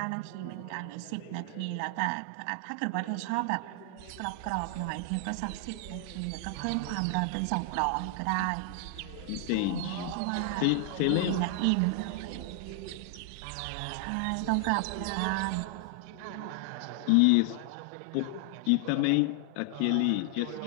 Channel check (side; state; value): both; different; correlation 0.00